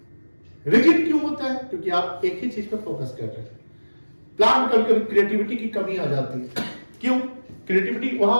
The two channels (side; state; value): both; inverted; correlation -1.00